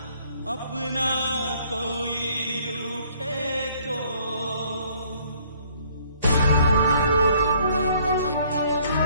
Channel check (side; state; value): both; inverted; correlation -0.62